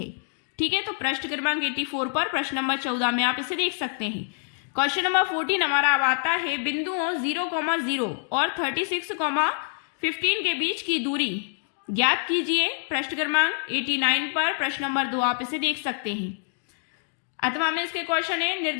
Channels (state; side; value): silent; right; 59 dB below the other